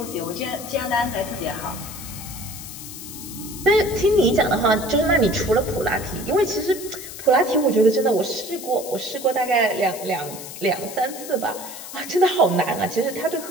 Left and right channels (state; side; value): noise; left; hiss, 12 dB below the sound